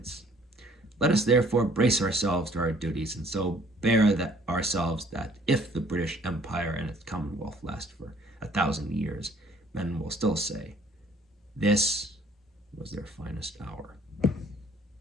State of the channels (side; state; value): both; normal; correlation 0.58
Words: Let us therefore brace ourselves to our duties, and so bear ourselves that if the British Empire and its Commonwealth last for 1,000 years, men will still say, this was their finest hour.